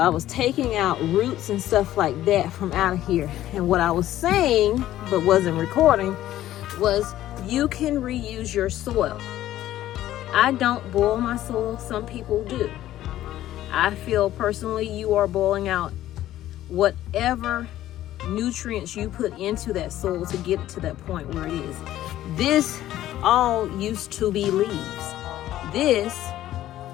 was taking out roots and stuff like that from out of here. And what I was saying, but wasn't recording, was you can reuse your soil. I don't boil my soil, some people do. I feel personally you are boiling out whatever nutrients you put into that soil to get it to that point where it is. This all used to be leaves. This,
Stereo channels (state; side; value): quieter; right; 13.6 dB